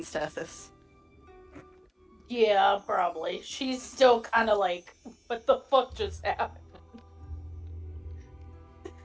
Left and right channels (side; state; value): both; identical; correlation 1.00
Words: Tethys? Yeah, probably. She's still kind of like, what the fuck just happened?